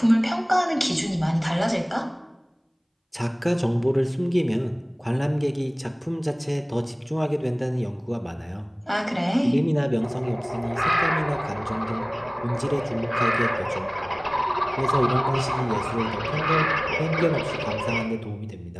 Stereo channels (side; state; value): both; identical; correlation 1.00